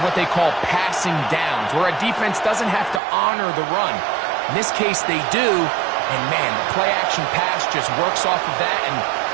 what they call passing downs, where a defense doesn't have to honor the run. In this case, they do. And, man, the play-action pass just works off of that and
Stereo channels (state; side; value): drops out; left; at 3.0 s